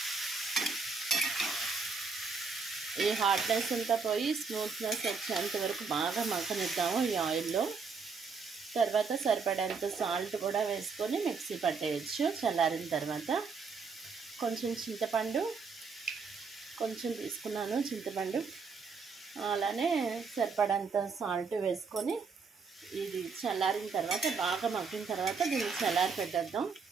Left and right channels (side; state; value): left; quieter; 5.0 dB